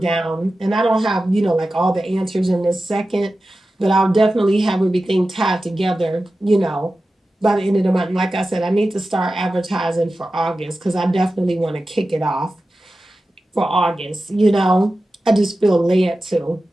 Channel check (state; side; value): normal; both; correlation 0.94